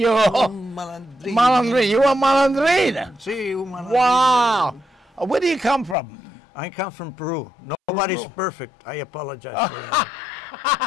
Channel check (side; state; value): right; drops out; at 6.0 s